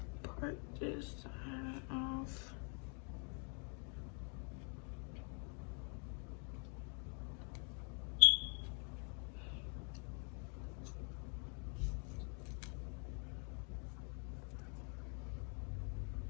part this side off.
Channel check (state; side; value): quieter; right; 39.6 dB